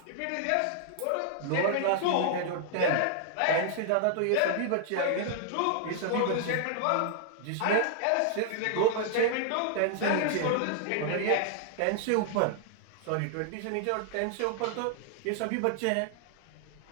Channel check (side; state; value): both; different; correlation -0.01